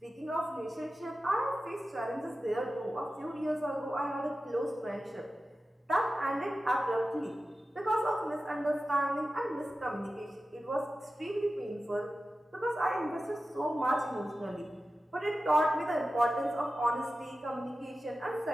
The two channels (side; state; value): both; normal; correlation 0.94